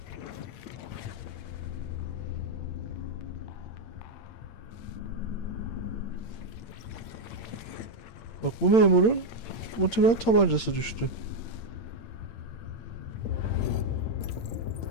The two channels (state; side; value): late; right; 8.8 ms